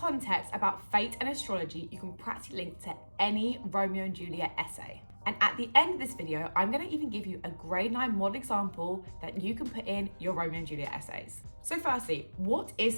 about fate and astrology you can practically link to any Romeo and Juliet essay. And at the end of this video, I'm going to even give you a grade 9 model example that you can put in your Romeo and Juliet essays. So firstly, what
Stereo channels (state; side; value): inverted; both; correlation -1.00